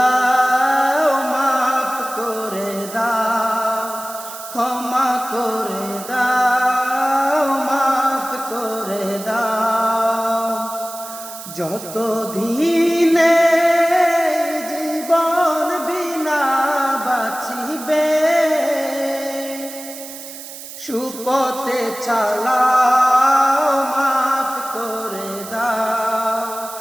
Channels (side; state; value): right; noise; hiss, 13 dB below the sound